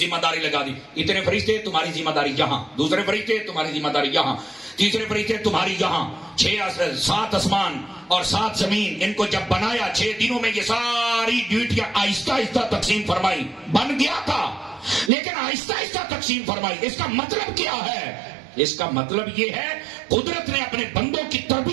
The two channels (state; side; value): drops out; left; at 15.1 s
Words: داری لگا دی، اتنے فرشتے تمہاری ذمہ داری یہاں، دوسرے فرشتے تمہاری ذمہ داری یہاں، تیسرے فرشتے تمہاری یہاں، 7 آسمان اور 7 زمین، ان کو جب بنایا 6 دنوں میں یہ ساری ڈیوٹیاں آہستہ آہستہ تقسیم فرمائی، بن گیا تھا لیکن آہستہ آہستہ تقسیم فرمائی۔ اس کا مطلب کیا ہے؟ اس کا مطلب یہ ہے قدرت نے اپنے بندوں کی